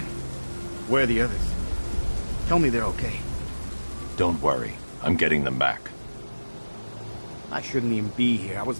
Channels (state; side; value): inverted; both; correlation -1.00